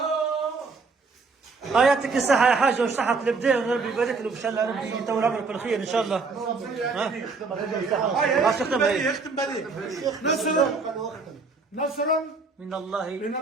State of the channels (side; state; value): left; quieter; 4.3 dB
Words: يعطيك الصحة يا حاج وصحة البداية وربي يبارك له ان شاء الله ربي يطول عمرك بالخير ان شاء الله. يختم بهذه نصر من الله من